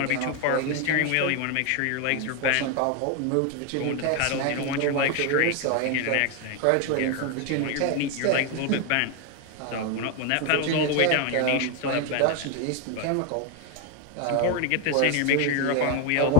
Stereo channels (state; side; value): different; both; correlation 0.01